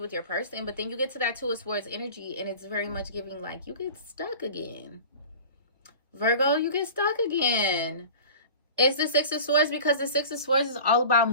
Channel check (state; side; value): inverted; both; correlation -0.39